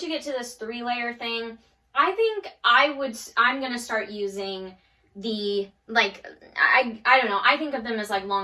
you get to this 3-layer thing, I think I'm going to start using the, like, I don't know, I think of them as like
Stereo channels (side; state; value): both; identical; correlation 1.00